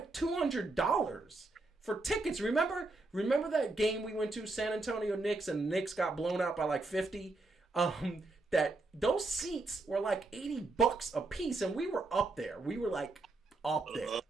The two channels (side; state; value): left; quieter; 3.2 dB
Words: $200 for tickets. Remember that game we went to, San Antonio Knicks, and the Knicks got blown out by like 50? That those seats were like $80 a piece, and we were up there. We were like up there.